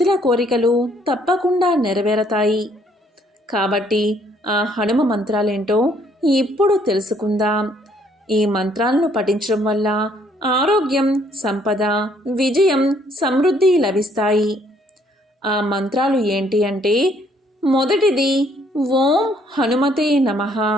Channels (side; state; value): both; normal; correlation 0.65